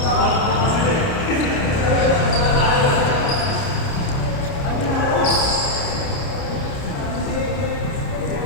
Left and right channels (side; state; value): right; late; 30 ms